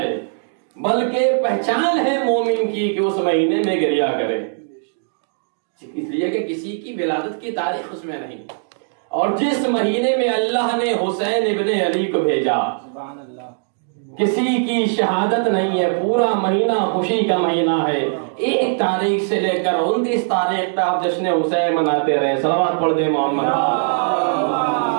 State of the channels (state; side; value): silent; left; digital silence